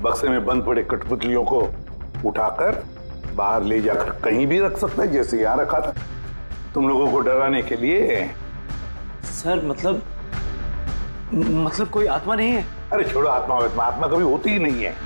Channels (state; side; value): inverted; both; correlation -1.00